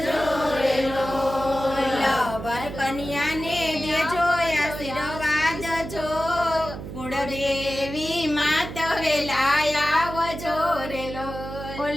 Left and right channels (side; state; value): right; noise; hum, 9 dB below the sound